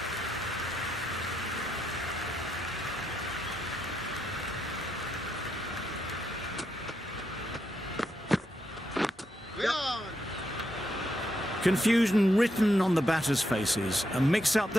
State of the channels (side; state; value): both; normal; correlation 0.81